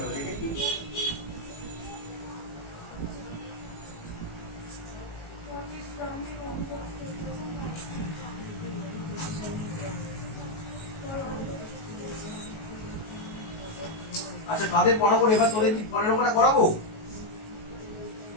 দেখে কি আচ্ছা কাদের পড়াবো এবার, তোদের কি পরের অঙ্কটা করাবো?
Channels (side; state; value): right; late; 19 ms